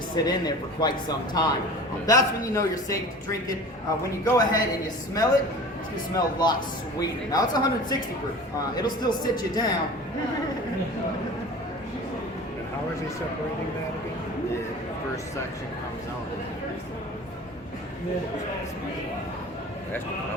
sit in there for quite some time. That's when you know you're safe to drink it. When you go ahead and you smell it, it's going to smell a lot sweeter. Now, it's 160 proof. It'll still sit you down. And how is he separating that again? The first section comes out. That's the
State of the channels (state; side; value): normal; both; correlation 0.39